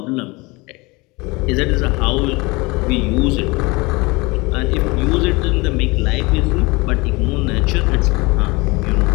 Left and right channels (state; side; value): quieter; right; 24.7 dB